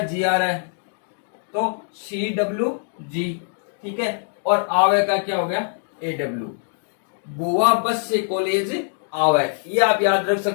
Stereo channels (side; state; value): right; silent; digital silence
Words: जी आर है, तो सी डब्ल्यू जी। ठीक है, और आवे का क्या हो गया ए डब्ल्यू, बुआ बस से कॉलेज आवे, ये आप याद रख